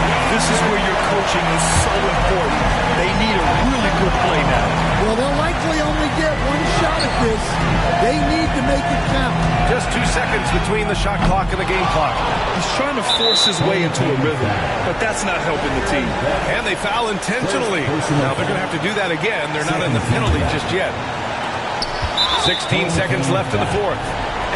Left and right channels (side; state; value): both; identical; correlation 1.00